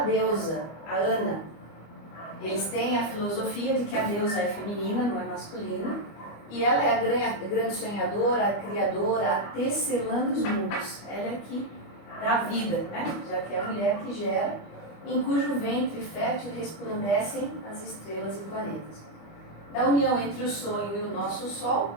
a Ana. Eles têm a filosofia de que a deusa é feminina, não é masculina, e ela é a grande sonhadora, a criadora, a tecelã dos mundos. Ela é que dá vida, né? Já que é a mulher que gera, em cujo ventre fértil resplandecem as estrelas e planetas. Da união entre o sonho e o nosso sol,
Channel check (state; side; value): late; right; 25 ms